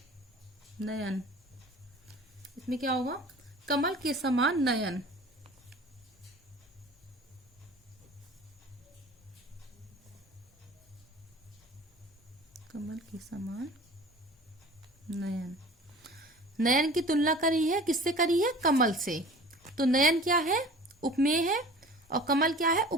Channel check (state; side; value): normal; both; correlation 0.43